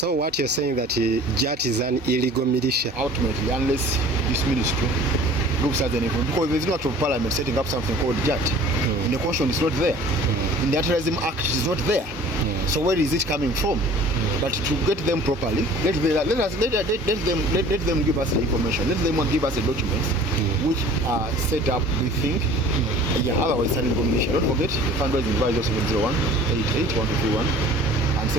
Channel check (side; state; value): both; normal; correlation 0.47